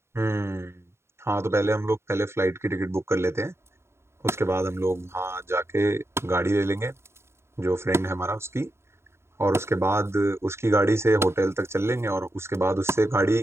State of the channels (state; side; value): late; left; 0.13 ms